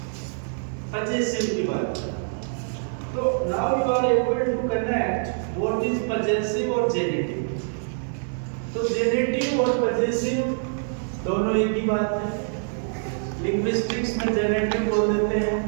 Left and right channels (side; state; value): left; silent; digital silence